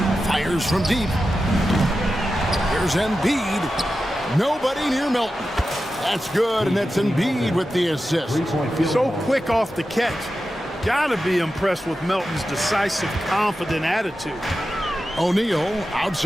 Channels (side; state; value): both; normal; correlation 0.92